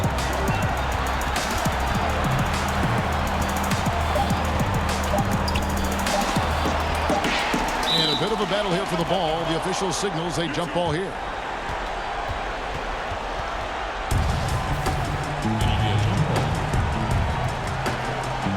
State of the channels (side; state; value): both; identical; correlation 1.00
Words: And a bit of a battle here for the ball. The official signals a jump ball here.